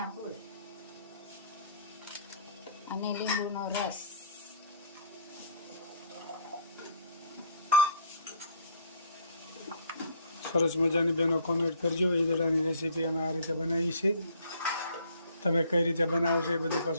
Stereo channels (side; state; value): both; inverted; correlation -0.57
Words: ફૂલ અને લીંબુનો રસ. સરસ મજાની બેનો કોમેન્ટ કરજો. ઈદડાની રેસીપી અમે આ રીતે બનાવી છે. તમે કઈ રીતે બનાવો છો એ બધી